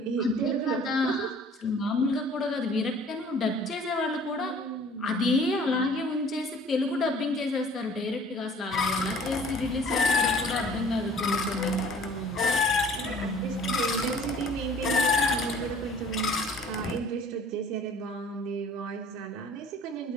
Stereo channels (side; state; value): both; normal; correlation 0.51